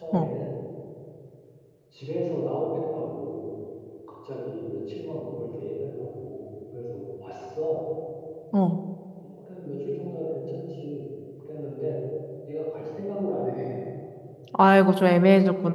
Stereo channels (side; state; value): both; identical; correlation 1.00